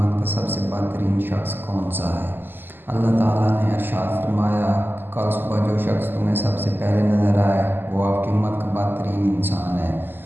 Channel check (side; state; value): left; late; 0.094 ms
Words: کا سب سے بہترین شخص کون سا ہے؟ اللہ تعالیٰ نے ارشاد فرمایا کہ کل صبح جو شخص تمہیں سب سے پہلے نظر آئے وہ آپ کی امت کا بہترین انسان ہے۔